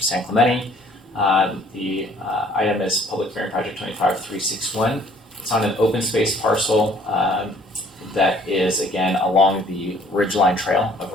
Clemente. The item is Public Hearing Project 25361. It's on an open space parcel that is, again, along the Ridgeline Trail of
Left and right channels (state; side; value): normal; both; correlation 0.57